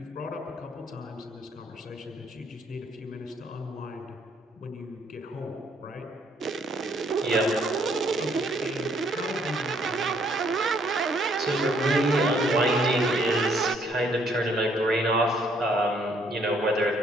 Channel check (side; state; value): both; normal; correlation 0.67